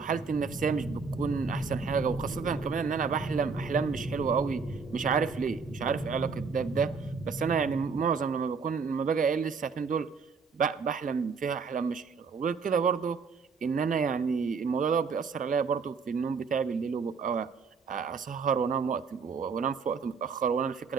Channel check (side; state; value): left; quieter; 5.3 dB